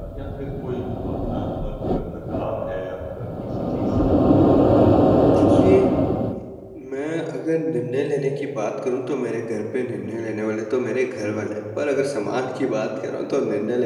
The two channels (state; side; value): identical; both; correlation 1.00